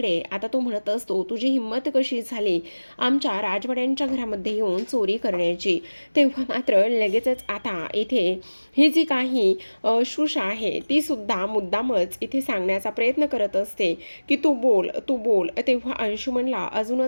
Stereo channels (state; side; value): inverted; both; correlation -1.00